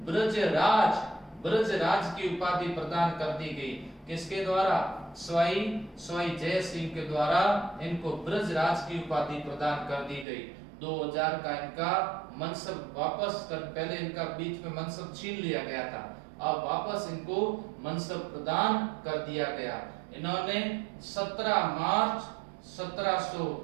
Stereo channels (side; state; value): left; drops out; at 10.2 s